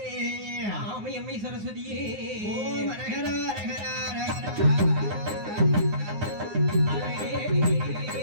ஆமை அம்மை சரஸ்வதியே ஓம் அரகரா அரகரா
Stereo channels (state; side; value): late; left; 9.6 ms